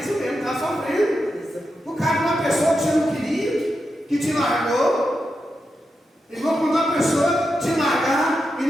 mesmo, estava sofrendo. O cara de uma pessoa que você não queria, que te largou. Igual quando uma pessoa te largar e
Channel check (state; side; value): normal; both; correlation 0.87